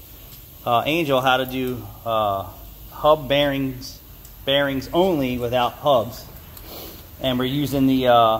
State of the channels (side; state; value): both; identical; correlation 1.00